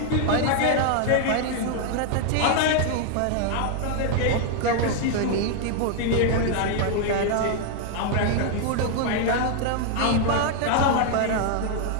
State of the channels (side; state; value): both; different; correlation 0.00